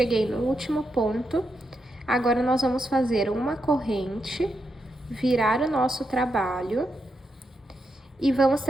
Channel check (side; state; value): both; normal; correlation 0.84